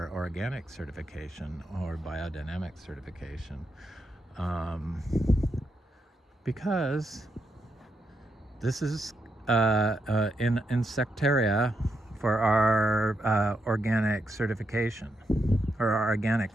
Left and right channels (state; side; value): normal; both; correlation 0.83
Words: organic certification or biodynamic certification, because this is in insectaria for our organic certification, or our organic